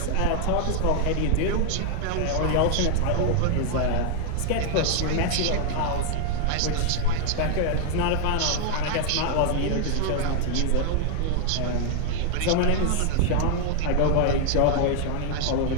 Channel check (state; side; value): different; both; correlation 0.00